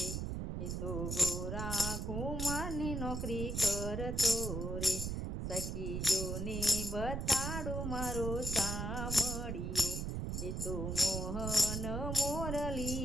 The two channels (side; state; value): right; noise; rumble, 2 dB below the sound